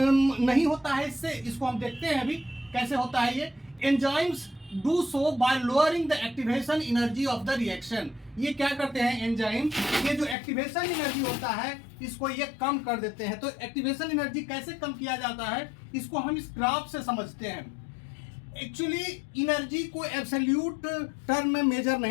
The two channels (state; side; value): drops out; right; at 10.4 s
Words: नहीं होता है इससे, इसको हम देखते हैं अभी कैसे होता है ये। Enzymes do so bye lowering the activation energy of the reaction. ये क्या करते हैं एंजाइम? ये जो एक्टिवेशन एनर्जी होता है इसको ये कम कर देते हैं। तो एक्टिवेशन एनर्जी कैसे कम किया जाता है, इसको हम इस ग्राफ से समझते हैं। एक्चुअली एनर्जी को एब्सोल्यूट टर्म में मेजर